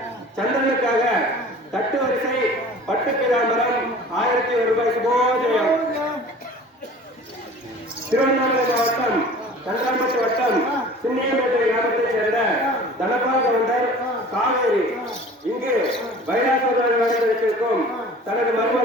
சந்திரனுக்காக தட்டு வரிசை பட்டு பிராமரம் 1001 ரூபாய் சுபோஜயம். திருவண்ணாமலை மாவட்டம் கன்றாம்பட்டு வட்டம் சின்னியம்பேட்டை கிராமத்தைச் சேர்ந்த தனபால் கவுண்டர் காவேரி இங்கு வைராசமாக நடந்திருக்கும் தனது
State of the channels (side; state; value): both; normal; correlation 0.44